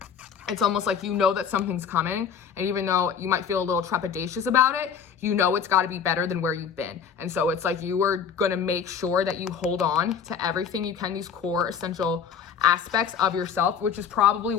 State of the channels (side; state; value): right; quieter; 7.2 dB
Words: It's almost like you know that something's coming, and even though you might feel a little trepidatious about it, you know it's got to be better than where you've been. And so it's like you are going to make sure that you hold on to everything you can, these core essential aspects of yourself, which is probably